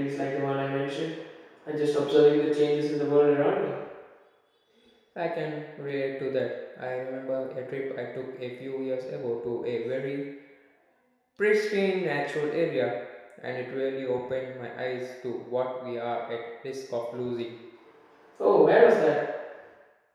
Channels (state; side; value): identical; both; correlation 1.00